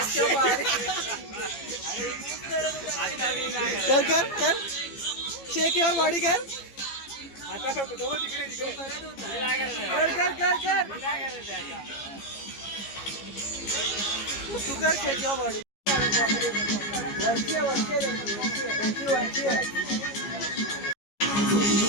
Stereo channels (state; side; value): late; right; 15 ms